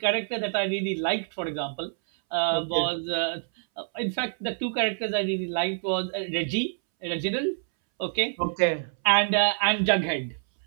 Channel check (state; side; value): silent; left; 60 dB below the other